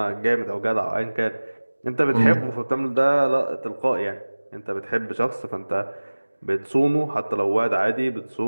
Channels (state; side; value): inverted; both; correlation -1.00